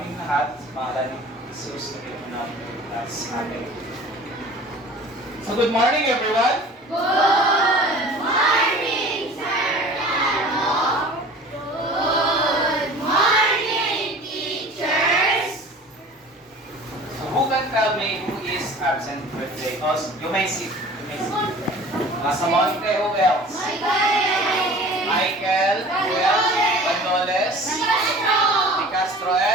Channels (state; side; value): normal; both; correlation 0.43